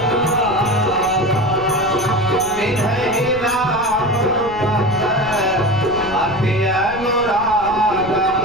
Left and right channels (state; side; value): noise; left; rumble, 15 dB below the sound